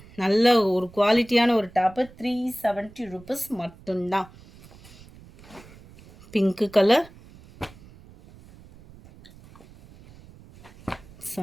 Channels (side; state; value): right; noise; rumble, 22 dB below the sound